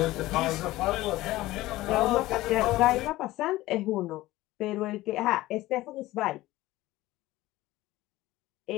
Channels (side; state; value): right; quieter; 17.3 dB